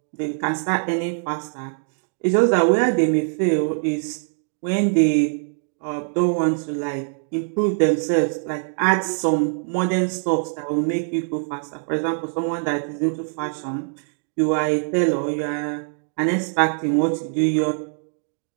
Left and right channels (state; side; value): silent; left; digital silence